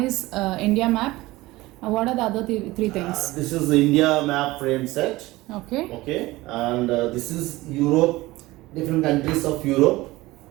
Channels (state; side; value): quieter; left; 19.3 dB